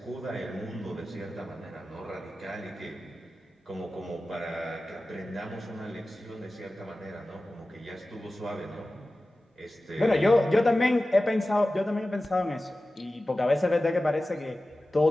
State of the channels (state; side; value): normal; both; correlation 0.95